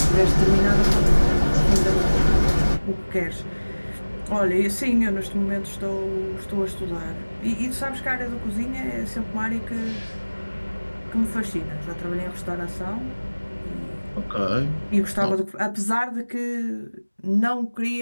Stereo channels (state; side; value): inverted; both; correlation -1.00